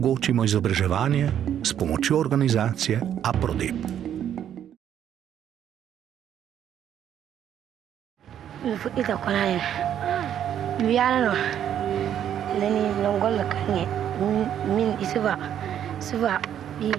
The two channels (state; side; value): quieter; left; 9.9 dB